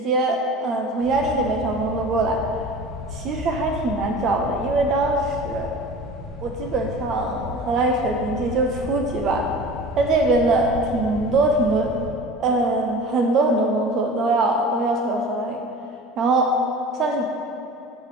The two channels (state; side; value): normal; both; correlation 0.38